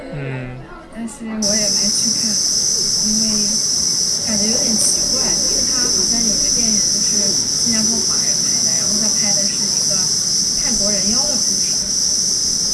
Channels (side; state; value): both; identical; correlation 1.00